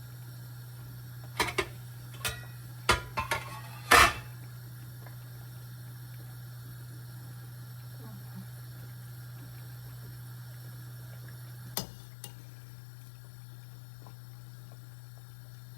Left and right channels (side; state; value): right; drops out; at 11.8 s